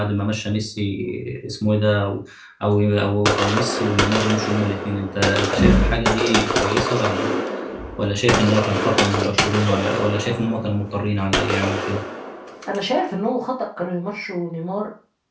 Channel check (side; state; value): both; identical; correlation 1.00